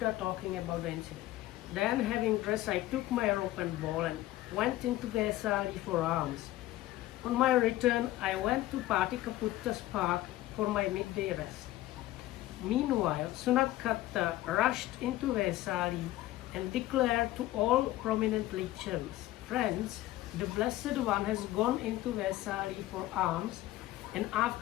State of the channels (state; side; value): quieter; right; 15.8 dB